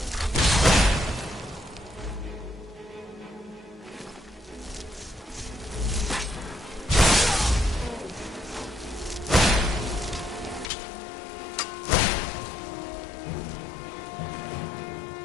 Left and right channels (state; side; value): drops out; right; at 10.7 s